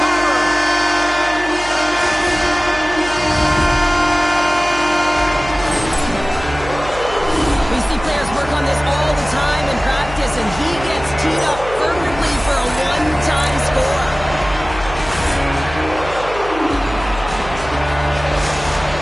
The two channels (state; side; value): noise; right; hum, 13 dB below the sound